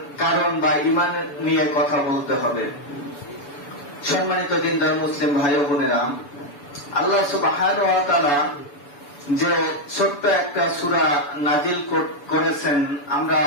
কারণ বা ঈমান নিয়ে কথা বলতে হবে। সম্মানিত দিনদার মুসলিম ভাই ও বোনেরা, আল্লাহ সুবহানাহু ওয়া তাআলা যে ছোট্ট একটা সূরা নাজিল করেছেন, আমরা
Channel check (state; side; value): late; right; 7.0 ms